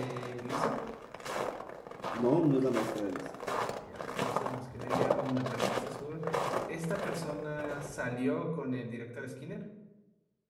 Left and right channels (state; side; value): identical; both; correlation 1.00